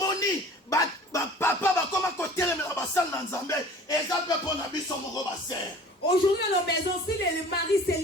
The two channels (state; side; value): normal; both; correlation 0.46